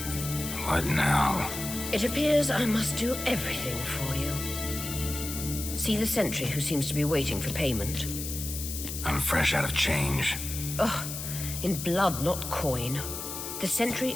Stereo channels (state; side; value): noise; left; hiss, 6 dB below the sound